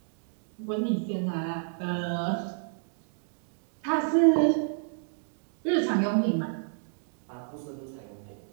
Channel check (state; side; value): silent; left; digital silence